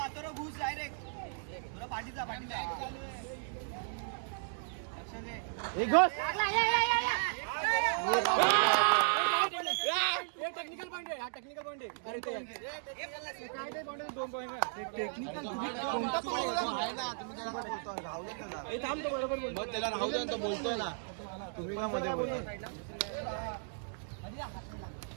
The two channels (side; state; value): left; silent; digital silence